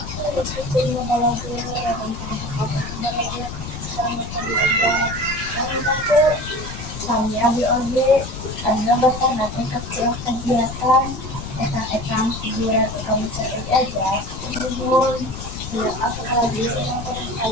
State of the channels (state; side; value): noise; left; rumble, 9 dB below the sound